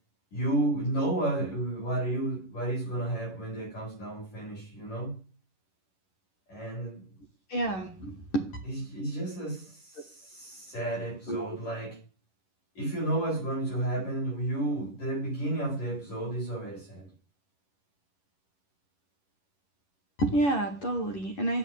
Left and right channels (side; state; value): right; late; 11 ms